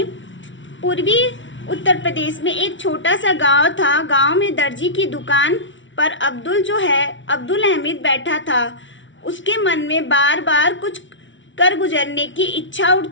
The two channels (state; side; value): late; right; 0.56 ms